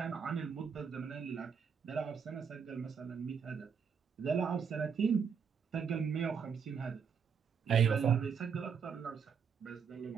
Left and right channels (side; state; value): left; quieter; 6.6 dB